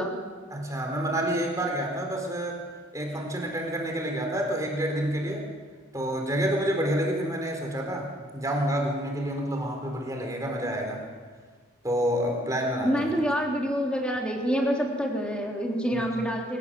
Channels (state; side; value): normal; both; correlation 0.63